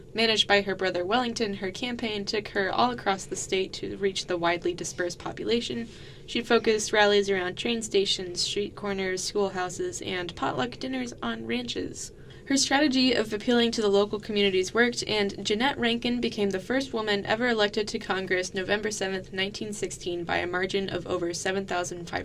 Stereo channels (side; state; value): both; identical; correlation 1.00